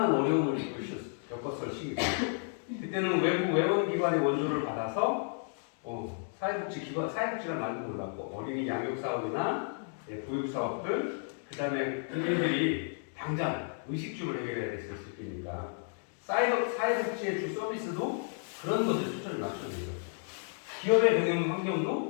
어려움을 겪었을 시기고 그때는 외부 외원기관의 원조를 받아서 사회복지란 말도 몰랐고 어린이 양육 사업이나 보육 사업들 그 다음에 국민들이 당장 의식주를 해결해야 됐을 때니까 사회복지의 주 서비스도 그런 것에 초점을 맞춰야 돼요. 기업의 경영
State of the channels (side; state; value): right; silent; 56 dB below the other